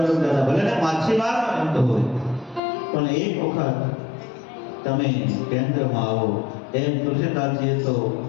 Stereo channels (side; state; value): right; drops out; at 2.6 s